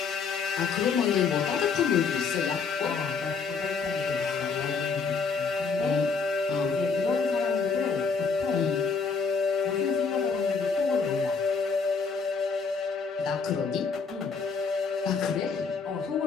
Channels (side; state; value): right; quieter; 5.2 dB